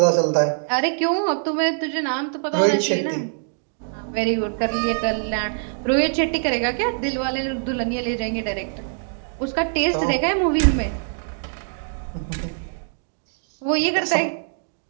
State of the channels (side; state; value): left; silent; digital silence